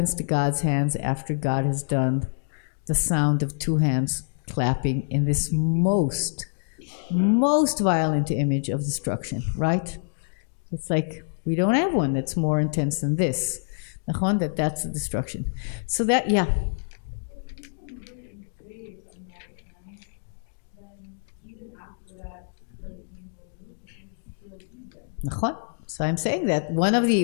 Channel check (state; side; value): silent; right; digital silence